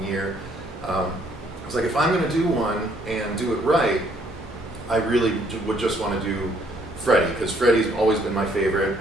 year, I was like, if I'm going to do one and do it right, I really would just want to do Freddy, because Freddy's always been my favorite,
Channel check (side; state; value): both; normal; correlation 0.66